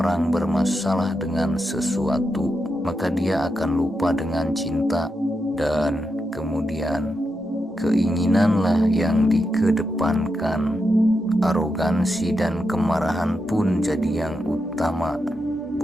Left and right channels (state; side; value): normal; both; correlation 0.86